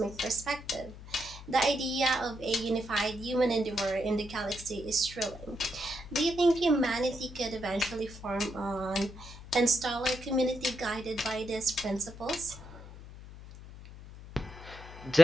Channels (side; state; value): left; noise; hum, 16 dB below the sound